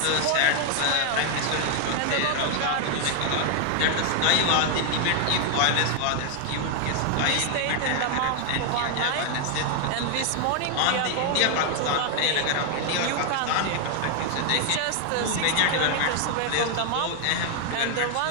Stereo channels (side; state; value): both; different; correlation 0.00